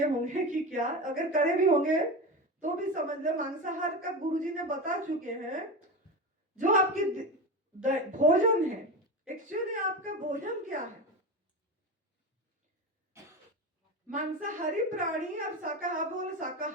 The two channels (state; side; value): normal; both; correlation 0.22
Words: होंगे कि क्या, अगर करे भी होंगे तो भी समझ लो मांसाहार का गुरुजी ने बता चुके हैं। जो आपकी भोजन है, एक्चुअली आपका भोजन क्या है। मांसाहारी प्राणी, आप शाकाहारी बोलो,